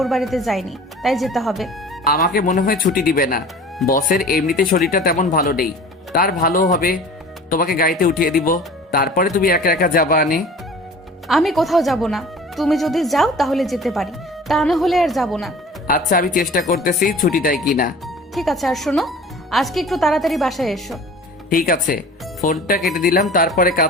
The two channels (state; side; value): normal; both; correlation 0.42